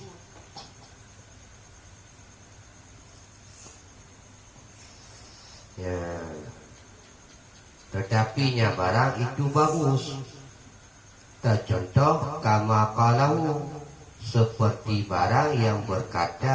tetapinya barang itu bagus contoh kama qalahu seperti barang yang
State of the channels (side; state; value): both; identical; correlation 1.00